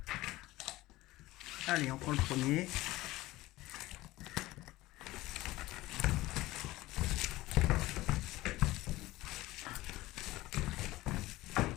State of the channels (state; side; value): quieter; right; 18.2 dB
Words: Allez, on prend le premier.